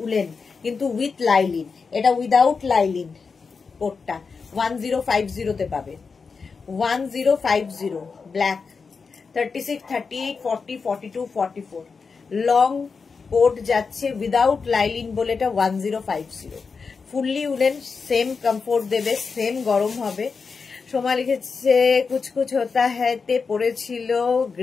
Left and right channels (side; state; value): right; quieter; 5.0 dB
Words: উলেন, কিন্তু উইথ লাইলিন। এটা উইদাউট লাইলিন কোটটা 1050-তে পাবে। 1050 ব্ল্যাক। 36, 38, 40, 42, 44 লং কোট যাচ্ছে উইদাউট লাইলিন বলে এটা 1050। ফুললি উলেন, সেম কমফোর্ট দেবে, সেম গরম হবে। সোমা লিখেছে কুচকুচ হতা হ্যাঁ তে পড়েছিল